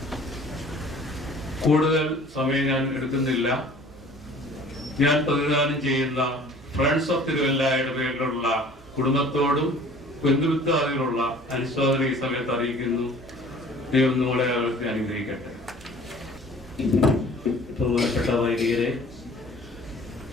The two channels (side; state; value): both; normal; correlation 0.49